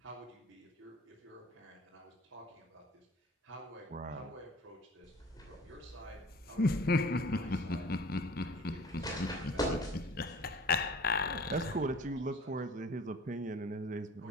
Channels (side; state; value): both; normal; correlation 0.45